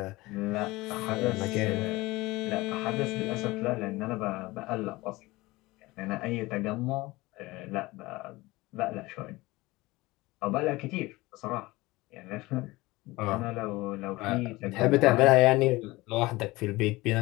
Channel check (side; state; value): right; quieter; 20.6 dB